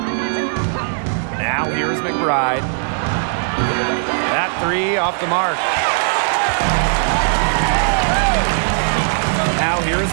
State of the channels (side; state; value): left; silent; 67 dB below the other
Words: Now here's McBride. That 3 off the mark. Now here's